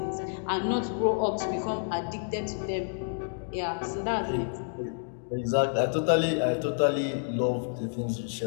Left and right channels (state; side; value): silent; right; digital silence